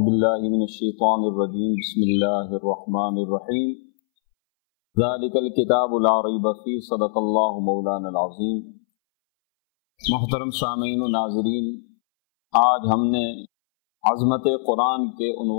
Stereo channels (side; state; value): right; silent; 63 dB below the other